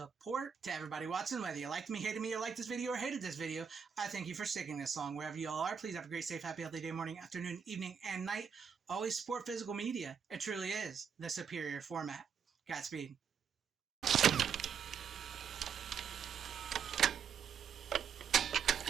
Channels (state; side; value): quieter; left; 7.0 dB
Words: To everybody watching, whether you liked me, hated me, or liked this video, or hated this video, I thank you for sticking this long. Wherever you all are, please have a great, safe, happy, healthy day, morning, afternoon, evening, and night. Always support physical media. It truly is the superior format. Godspeed.